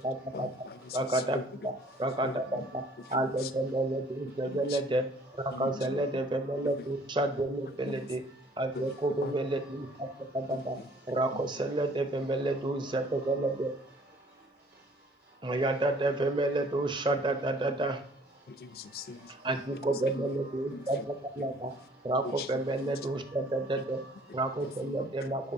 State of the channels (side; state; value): both; normal; correlation 0.56